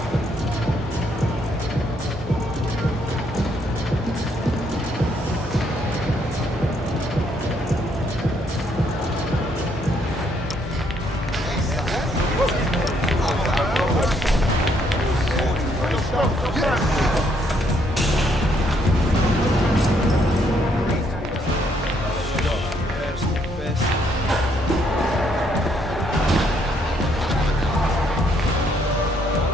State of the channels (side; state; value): both; normal; correlation 0.70